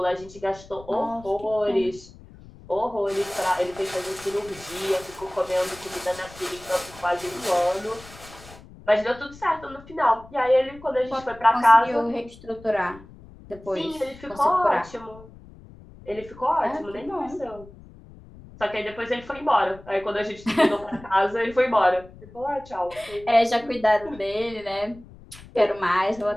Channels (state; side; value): noise; left; rumble, 20 dB below the sound